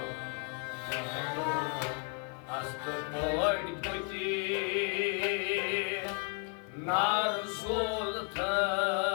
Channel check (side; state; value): right; quieter; 36.5 dB